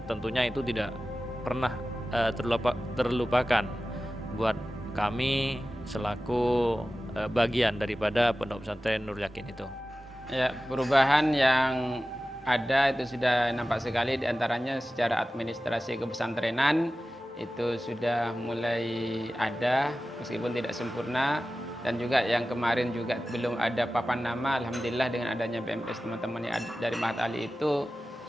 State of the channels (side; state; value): both; normal; correlation 0.95